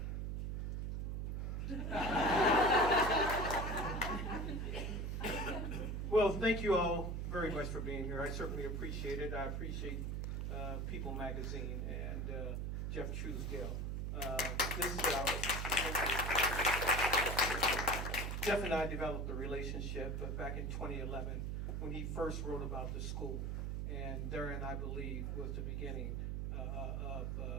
Well, thank you all very much for being here. I certainly appreciate it. I appreciate People Magazine and Jeff Truesdale. Jeff and I developed a relationship back in 2011 when he first wrote about the school. And therein, I believe, was the beginning of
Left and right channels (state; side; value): noise; right; hum, 1 dB below the sound